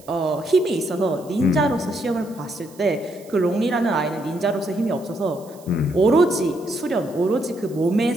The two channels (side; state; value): right; noise; hiss, 24 dB below the sound